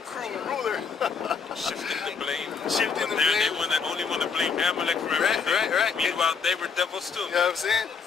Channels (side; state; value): right; quieter; 5.6 dB